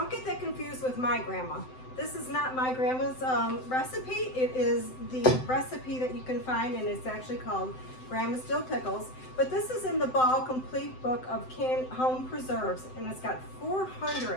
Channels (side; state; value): right; late; 7.8 ms